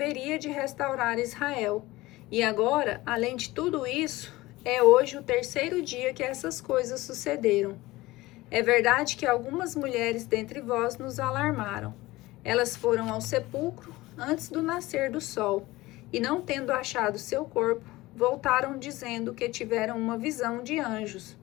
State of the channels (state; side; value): quieter; right; 19.2 dB